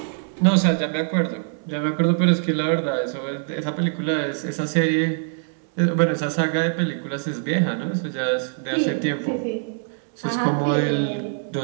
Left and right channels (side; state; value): left; silent; 63 dB below the other